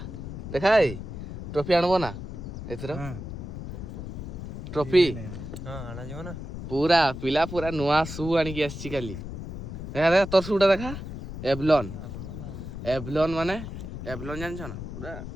ଦେଖା ଭାଇ ଟ୍ରଫି ଆଣିବ ନା ଏଥର? ଟ୍ରଫି ଆଣାଯିବ ନା। ପୁରା ପିଲା ପୁରା ନୂଆ ସୁ ଆଣିକି ଆସିଛି କାଲି। ଦେଖା ଦେଖା ତୋର ସୁଟା ଦେଖା, ଏଭଲନ୍। ଏଭଲନ୍ ମାନେ ଏଭଲନ୍ ଜାଣିଛ ନା? ପୁରା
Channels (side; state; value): left; noise; rumble, 8 dB below the sound